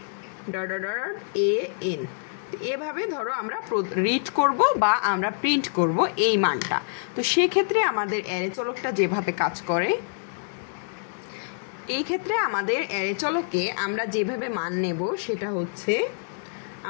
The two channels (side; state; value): right; silent; 61 dB below the other